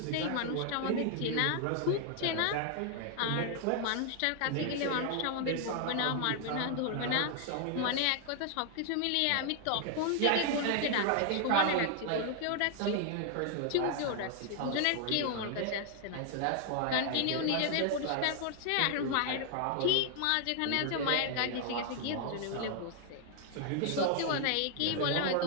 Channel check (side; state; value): both; different; correlation 0.00